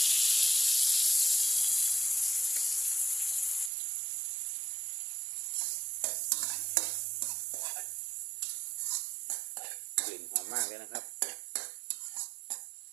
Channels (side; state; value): left; drops out; at 3.7 s